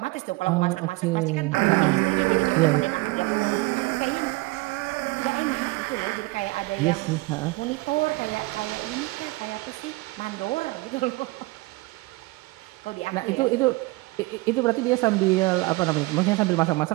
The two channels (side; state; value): left; quieter; 22.6 dB